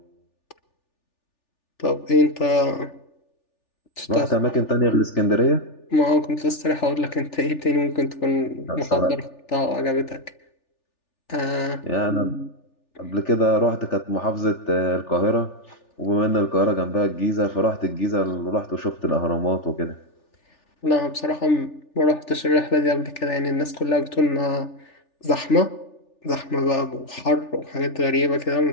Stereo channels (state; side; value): late; right; 3.4 ms